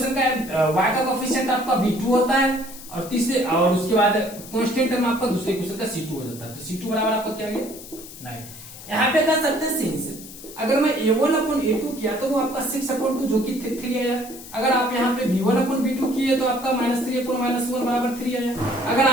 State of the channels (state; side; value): noise; left; hiss, 15 dB below the sound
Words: का y का कोएफिशिएंट आपका b2 होता है और तीसरे और उसके बाद कांस्टेंट टर्म आपका दूसरे इक्वेशन का c2 हो जाता है। तो c2 बराबर आपका क्या आ गया 9। यहाँ पे कह सकते हैं सिंस अगर मैं a1 अपन a2 किया तो वो आपका 6/2 जो कि 3 आया। अगर आप यहाँ पे b1 अपन b2 किए तो आपका -3 अपन -1 बराबर 3 आया। अगर